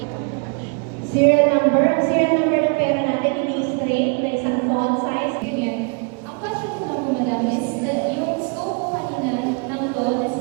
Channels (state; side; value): quieter; left; 36.2 dB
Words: Serial number ng pera natin, hindi straight, na isang font size, ganyan. Ang question ko lang po, madam, is yung scope kanina ng loan na